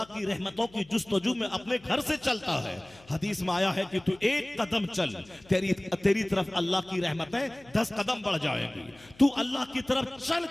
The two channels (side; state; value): left; noise; hum, 26 dB below the sound